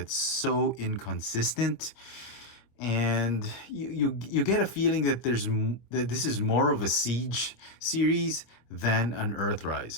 so inconsistent. And you get a feeling that that this is more of a Siege series than an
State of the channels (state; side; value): late; right; 25 ms